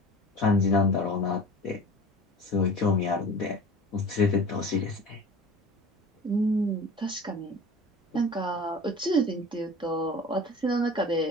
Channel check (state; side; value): normal; both; correlation 0.39